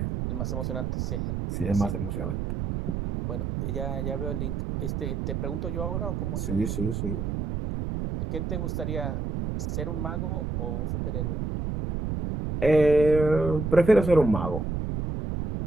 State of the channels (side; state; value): right; noise; rumble, 2 dB below the sound